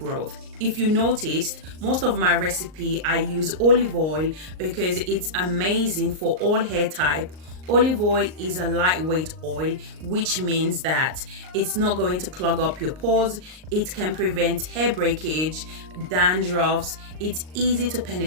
If you noticed, most of my recipe I use olive oil because it's amazing for all hair type. Olive oil is a lightweight oil, which means that it's not going to clog up your pores. It can prevent hair breakage, dandruffs. It's easy to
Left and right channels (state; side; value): late; left; 38 ms